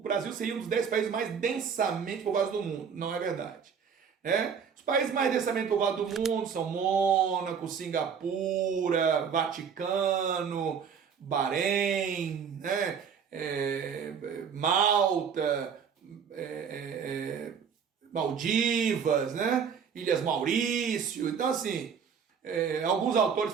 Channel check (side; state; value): left; quieter; 6.9 dB